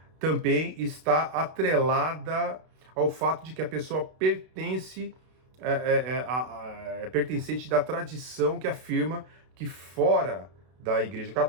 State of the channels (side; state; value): left; late; 32 ms